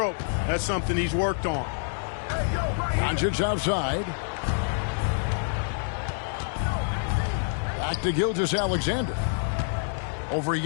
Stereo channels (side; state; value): right; silent; digital silence